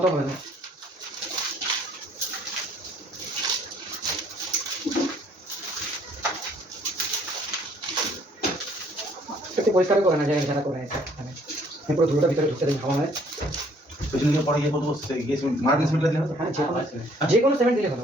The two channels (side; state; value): both; normal; correlation 0.62